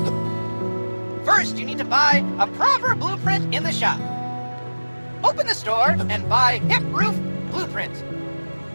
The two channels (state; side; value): inverted; both; correlation -1.00